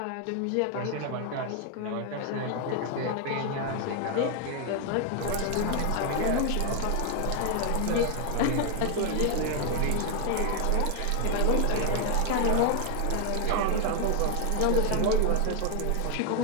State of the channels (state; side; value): different; both; correlation 0.00